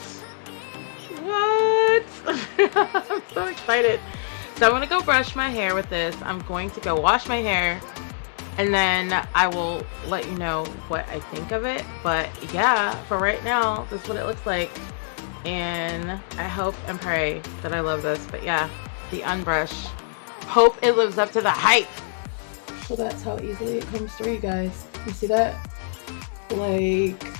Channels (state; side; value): silent; right; digital silence